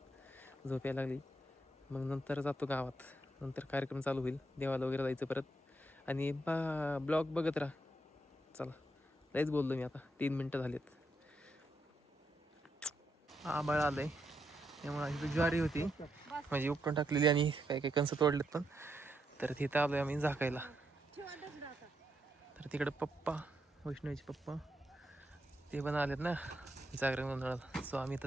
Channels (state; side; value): normal; both; correlation 0.80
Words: झोप यायला लागली. मग नंतर जातो गावात, नंतर कार्यक्रम चालू होईल, देवाला वगैरे जायचं परत. आणि ब्लॉग बघत राहा. चला लयच बोललो मी आता, 3 मिनटं झालेत. आंबाळ आलंय त्यामुळे इथं ज्वारी होती म्हणजे उपटून टाकलेली आणि काही काही कणसं तोडलेत पण. तर तिथं आलोय आम्ही झाकायला. तर तिकडे पप्पा, वैष्णवीचे पप्पा ते पण आलेत ना जागरण गोंधळाला. सो आम्ही